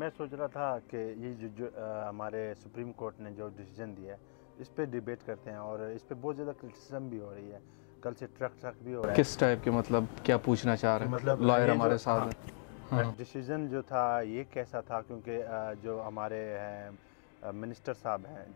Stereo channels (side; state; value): right; silent; digital silence